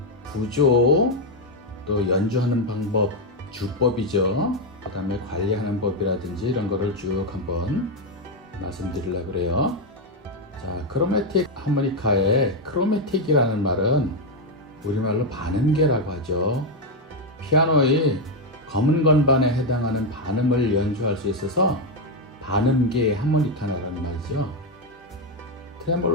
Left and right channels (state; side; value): normal; both; correlation 0.04